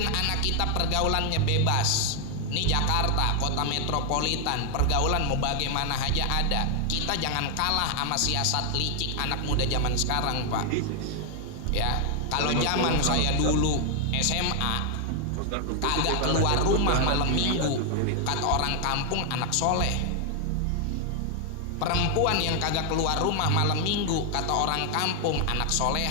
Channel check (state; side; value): different; both; correlation 0.00